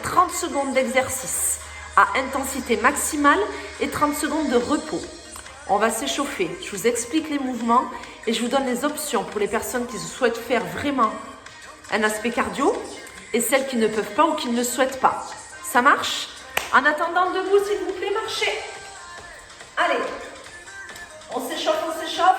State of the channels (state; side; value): identical; both; correlation 1.00